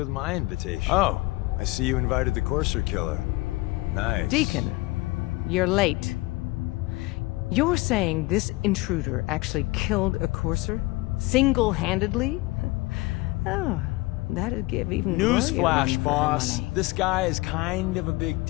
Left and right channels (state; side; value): quieter; right; 21.4 dB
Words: my invitation? Oh, I see you invited the courser killer. Nice. Deacon, you're late. You're saying this intruder actually killed a courser? Single-handedly? Oh, that'd give even Newsflash, boss. This guy is kind of a big